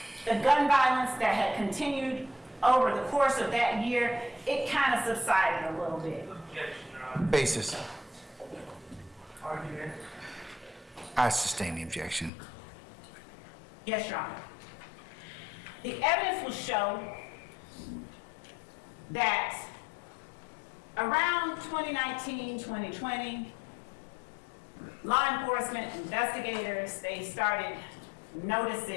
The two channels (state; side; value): drops out; right; at 12.3 s